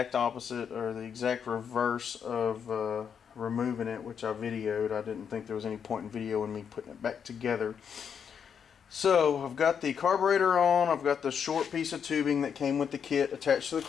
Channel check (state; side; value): quieter; right; 7.3 dB